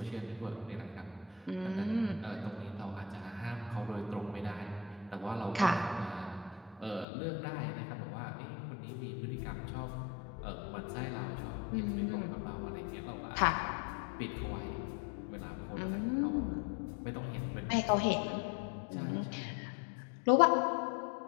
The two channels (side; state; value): right; drops out; at 7.1 s